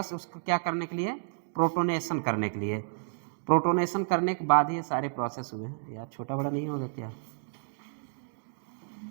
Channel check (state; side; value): silent; left; digital silence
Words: उसको क्या करने के लिए, प्रोटोनेशन करने के लिए। प्रोटोनेशन करने के बाद ही ये सारे प्रोसेस हुए। यार छोटा बड़ा नहीं होगा क्या,